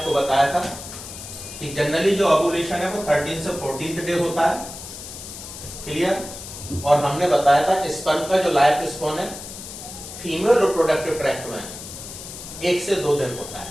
बताया था कि जनरली जो ओव्यूलेशन है वो 13 से 14th डे होता है, क्लियर। और हमने बताया था स्पर्म का जो लाइफ स्पैन है फीमेल रिप्रोडक्टिव ट्रैक्ट में 1 से 2 दिन होता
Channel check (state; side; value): noise; left; hiss, 12 dB below the sound